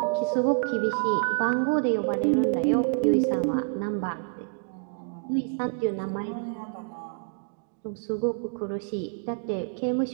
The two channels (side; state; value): left; silent; 60 dB below the other